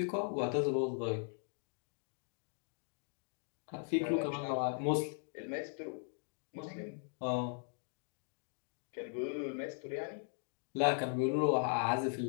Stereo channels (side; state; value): right; silent; 52 dB below the other